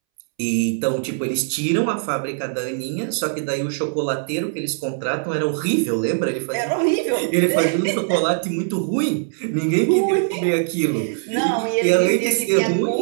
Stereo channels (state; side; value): silent; left; 65 dB below the other